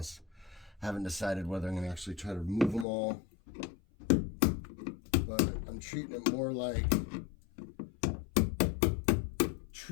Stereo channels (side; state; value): right; drops out; at 2.9 s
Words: I haven't decided whether I'm going to actually try to remove them all, but I'm treating it more like